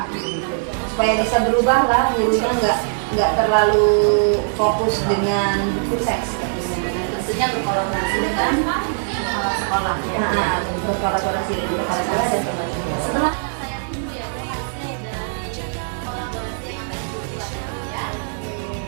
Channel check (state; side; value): silent; left; digital silence